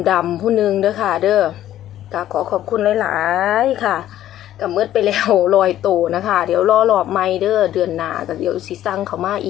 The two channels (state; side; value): quieter; right; 12.5 dB